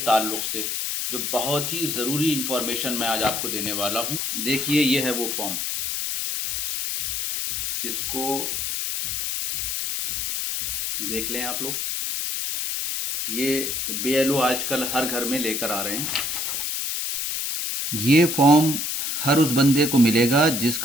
से, जो बहुत ही ज़रूरी इन्फॉर्मेशन मैं आज आपको देने वाला हूँ। देखिए, ये है वो फॉर्म। इसको देख लें आप लोग। ये BLO आजकल हर घर में लेकर आ रहे हैं। ये फॉर्म हर उस बंदे को मिलेगा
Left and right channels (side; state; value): left; noise; hiss, 1 dB below the sound